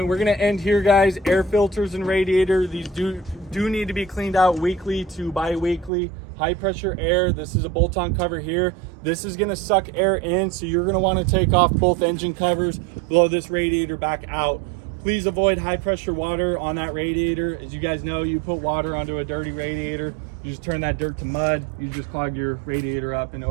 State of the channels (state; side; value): drops out; left; at 5.9 s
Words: we're gonna end here, guys. Air filters and radiator, these do need to be cleaned out weekly to bi-weekly. High pressure air, this is a bolt-on cover here. This is gonna suck air in, so you're gonna wanna take off both engine covers, blow this radiator back out. Please avoid high pressure water on that radiator. As you guys know, you put water onto a dirty radiator, you just turn that dirt to mud, you just clogged your radiator up and